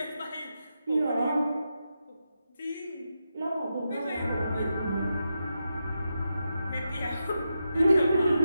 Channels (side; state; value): both; inverted; correlation -0.87